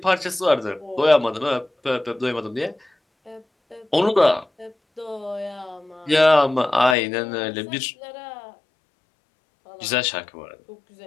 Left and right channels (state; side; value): drops out; right; at 7.0 s